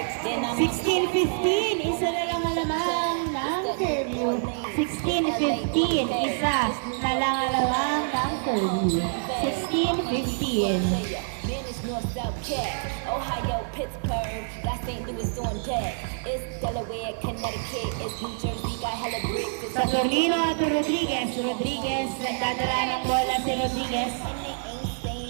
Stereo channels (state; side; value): silent; left; digital silence